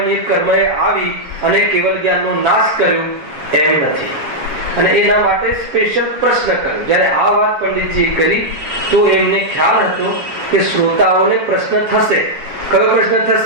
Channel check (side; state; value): left; late; 7.4 ms